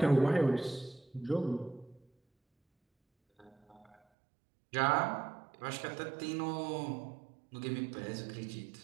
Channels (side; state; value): left; drops out; at 4.0 s